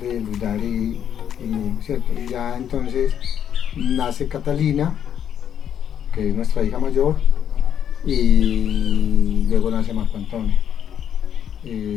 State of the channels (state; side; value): quieter; right; 9.2 dB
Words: Luz Dari, ¿cierto? Y ya entonces nace Catalina, que es nuestra hija mayor, y luego nace Marco Antonio.